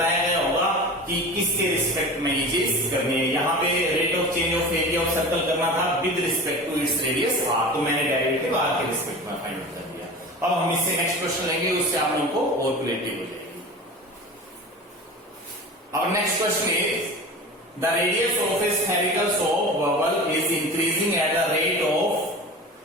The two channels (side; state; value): both; normal; correlation 0.34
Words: गया होगा कि किसके रिस्पेक्ट में ये चीज करनी है। यहाँ पे rate of change of area of circle करना था with respect to its radius r, तो मैंने डेरिवेटिव r के रिस्पेक्ट में फाइंड आउट कर दिया। अब हम इससे नेक्स्ट क्वेश्चन लेंगे, उससे आप लोगों को और क्लियरिटी हो जाएगी। अब next question is the radius of a spherical soap bubble is increasing at the rate of